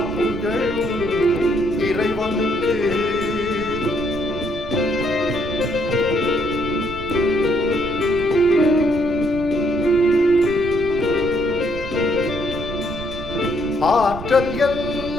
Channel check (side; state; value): right; noise; rumble, 10 dB below the sound